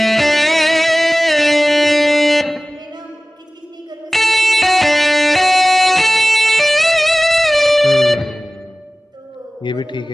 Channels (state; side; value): normal; both; correlation 0.98